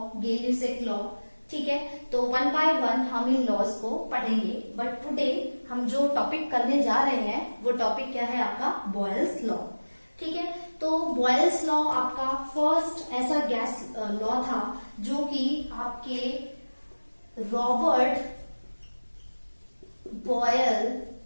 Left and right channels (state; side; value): inverted; both; correlation -1.00